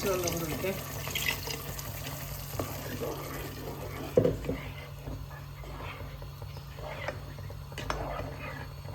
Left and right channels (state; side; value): identical; both; correlation 1.00